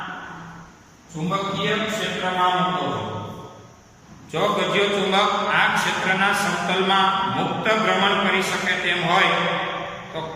ચુંબકીય ક્ષેત્રમાં મૂકો. જો ગજિયો ચુંબક આ ક્ષેત્રના સમતલમાં મુક્ત ભ્રમણ કરી શકે તેમ હોય તો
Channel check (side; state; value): both; identical; correlation 1.00